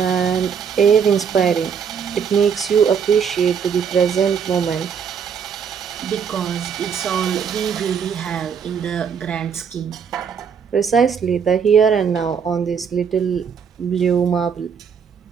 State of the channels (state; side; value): quieter; left; 6.9 dB